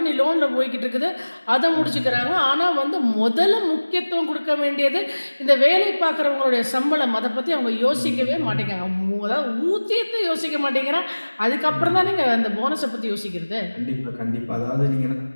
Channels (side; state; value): both; inverted; correlation -1.00